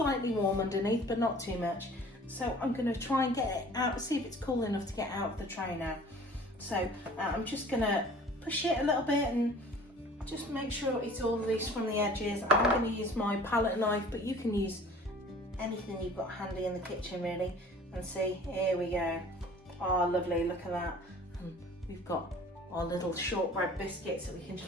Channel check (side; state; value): both; normal; correlation 0.48